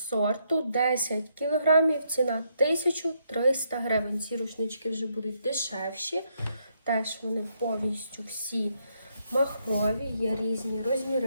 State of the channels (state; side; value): inverted; both; correlation -0.76